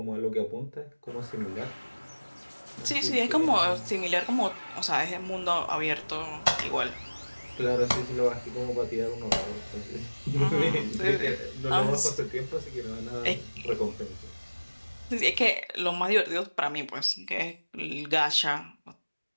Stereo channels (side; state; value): both; inverted; correlation -1.00